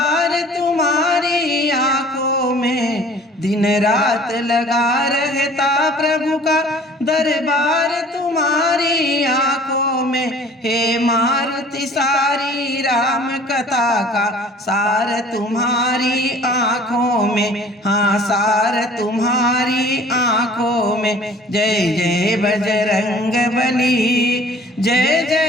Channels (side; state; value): both; normal; correlation 0.50